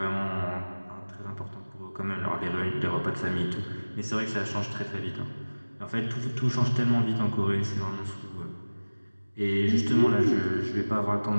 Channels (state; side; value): inverted; both; correlation -1.00